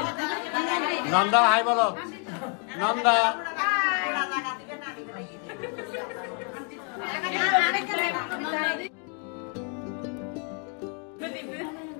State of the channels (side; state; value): right; quieter; 37.4 dB